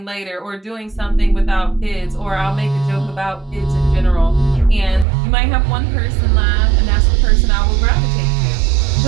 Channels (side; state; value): left; drops out; at 5.1 s